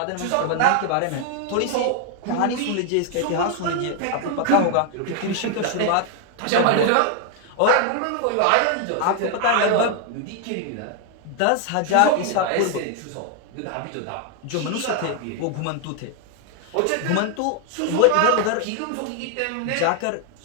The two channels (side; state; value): both; different; correlation 0.00